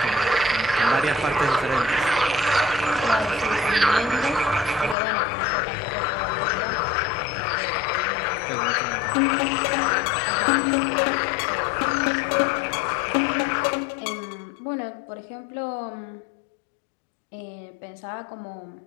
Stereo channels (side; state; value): right; drops out; at 5.0 s